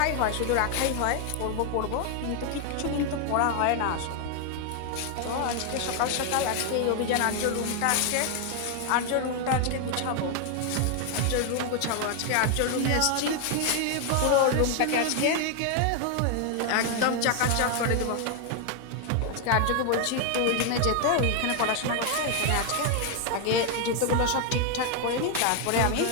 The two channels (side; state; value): both; different; correlation 0.00